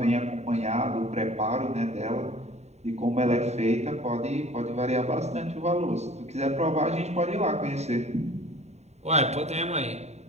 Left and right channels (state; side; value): late; left; 0.32 ms